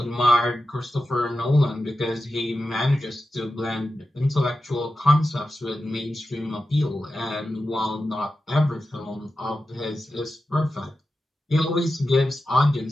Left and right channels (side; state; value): both; normal; correlation 0.92